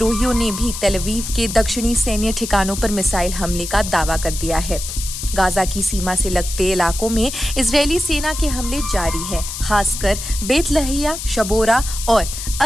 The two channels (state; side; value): noise; left; hiss, 7 dB below the sound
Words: ने भी तेल अवीव के दक्षिणी सैन्य ठिकानों पर मिसाइल हमले का दावा कर दिया है। गाजा की सीमा से लगते इलाकों में इजरायली सेना के हमले जारी है। खासकर बेत लहैया, शबोरा और